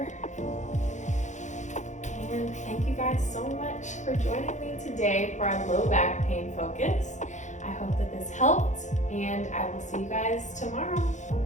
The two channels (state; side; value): late; right; 0.35 ms